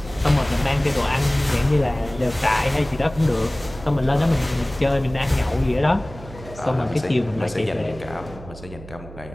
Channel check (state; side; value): noise; right; hum, 16 dB below the sound